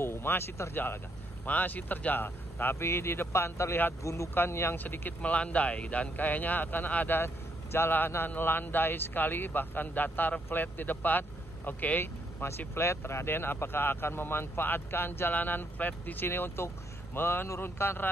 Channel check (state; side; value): normal; both; correlation 0.74